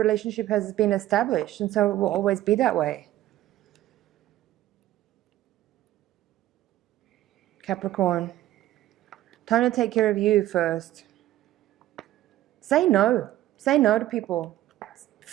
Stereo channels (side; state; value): left; quieter; 14.3 dB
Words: has been established, and so it will always be that way. Capricorn, time to take care of you first. Say no. Say no to people. It